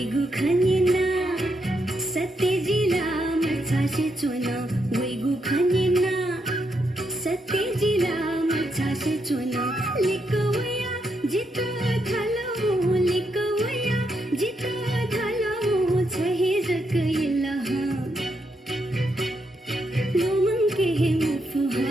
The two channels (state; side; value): normal; both; correlation 0.80